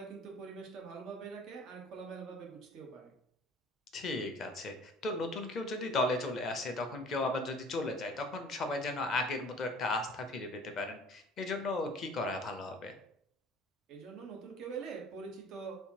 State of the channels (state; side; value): normal; both; correlation 0.48